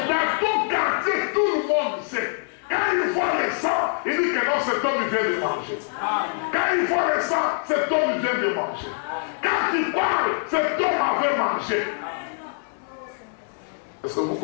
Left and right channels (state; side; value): silent; right; 61 dB below the other